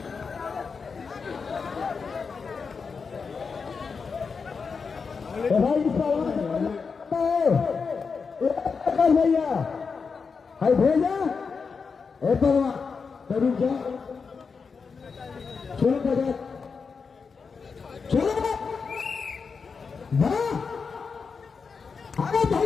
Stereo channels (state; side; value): quieter; right; 5.3 dB